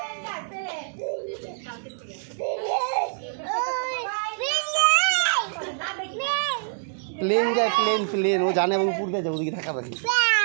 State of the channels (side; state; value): left; silent; digital silence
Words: প্লেন যায় প্লেন ও জানে এবং উপর দিয়ে যায় ওদিকে থাকা পাখি